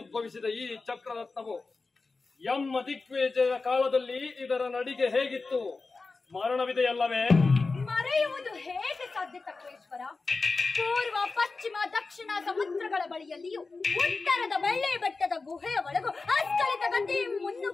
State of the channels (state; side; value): quieter; right; 3.9 dB